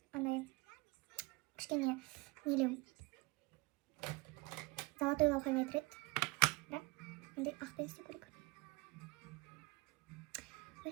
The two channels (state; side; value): quieter; left; 23.6 dB